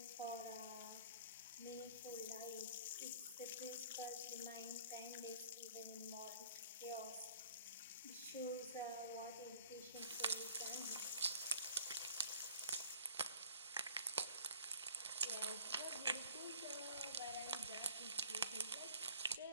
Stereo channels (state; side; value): inverted; both; correlation -0.51